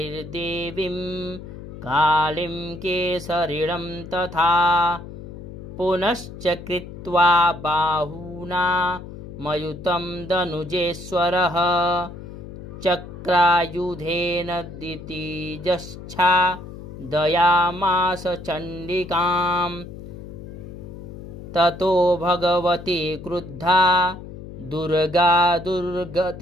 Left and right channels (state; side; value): noise; left; hum, 13 dB below the sound